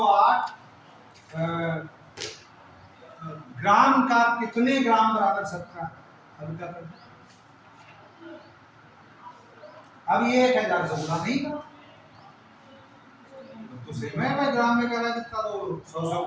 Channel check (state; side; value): identical; both; correlation 1.00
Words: ग्राम का कितने ग्राम बराबर 17, अब क्या करते, अब ये 1000 से गुणा नहीं करो, तो सेम है भाई, ग्राम में कह रहा है कितना, तो 100 से